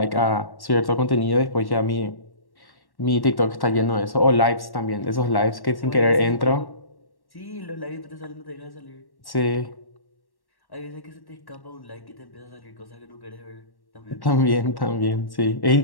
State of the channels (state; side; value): late; right; 1.1 ms